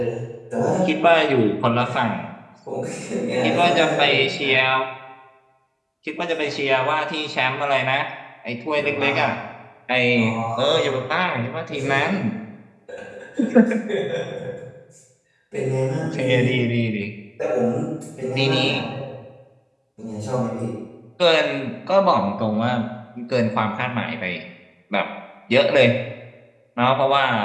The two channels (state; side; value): identical; both; correlation 1.00